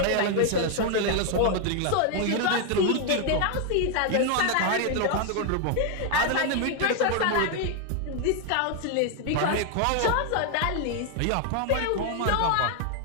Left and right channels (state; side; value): different; both; correlation 0.01